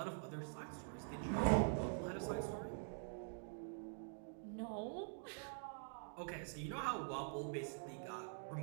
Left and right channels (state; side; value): silent; left; digital silence